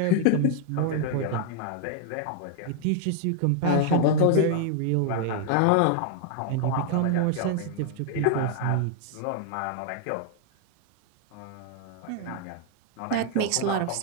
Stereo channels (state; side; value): different; both; correlation 0.00